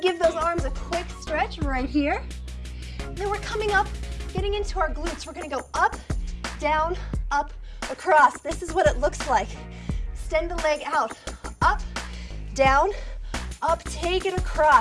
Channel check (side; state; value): both; identical; correlation 1.00